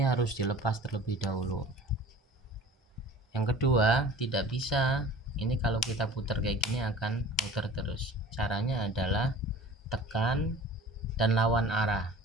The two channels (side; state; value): both; normal; correlation 0.43